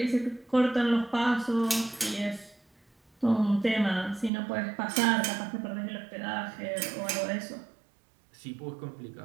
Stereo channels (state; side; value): drops out; left; at 4.3 s